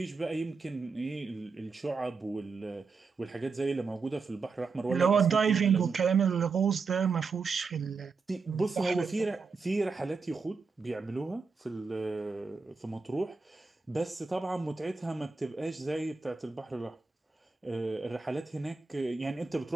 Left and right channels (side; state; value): left; quieter; 4.6 dB